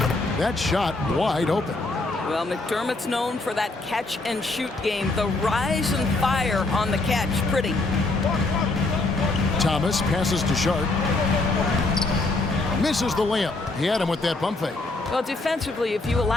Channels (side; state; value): right; quieter; 3.2 dB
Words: That shot wide open. Well, McDermott's known for that catch-and-shoot game. The rise and fire on the catch. Pretty. Thomas passes to Sharp. Misses the layup. He had him with that pump fake. Well, defensively, if you